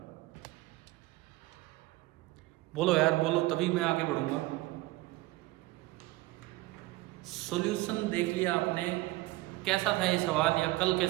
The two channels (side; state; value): left; quieter; 19.2 dB